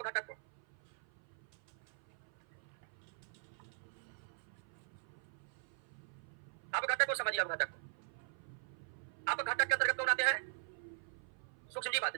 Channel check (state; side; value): silent; left; 50 dB below the other